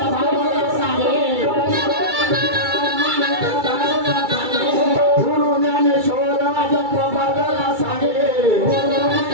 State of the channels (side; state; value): left; late; 2.3 ms